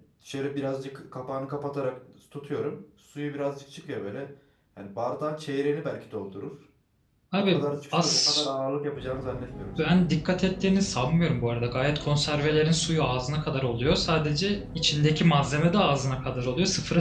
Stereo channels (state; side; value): identical; both; correlation 1.00